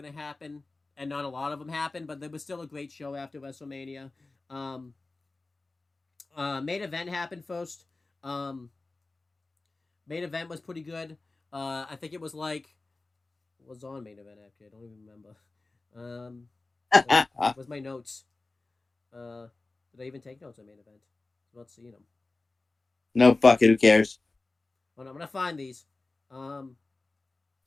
happen, and not a lot of them happened. But there was still a great show after WrestleMania. Um, Main event happened first. Um, Main event was pretty good. I think it was like what was on main event actually. I don't even remember. Where's my notes? Uh, did I even take notes on main event? I'm not seeing them. No, fuck it. Who cares? Hold on, I'm gonna find these. Um,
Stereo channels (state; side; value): quieter; right; 3.3 dB